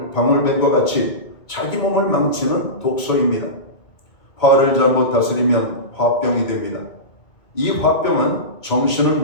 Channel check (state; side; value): late; right; 2.2 ms